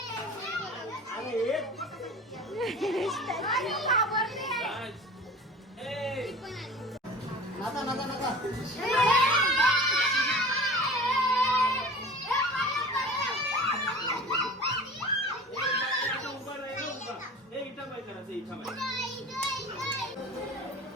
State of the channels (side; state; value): both; normal; correlation 0.39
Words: एन्जॉय करायचं इच्छा माझी.